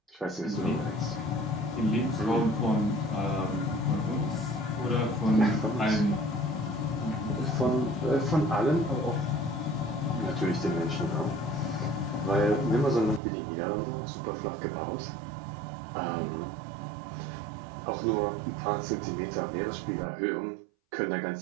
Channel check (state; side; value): drops out; left; at 13.2 s